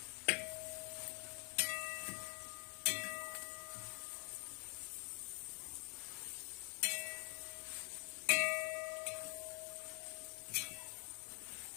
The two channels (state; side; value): quieter; right; 39.6 dB